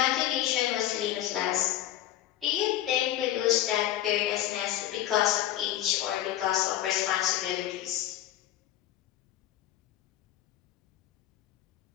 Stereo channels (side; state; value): right; quieter; 12.9 dB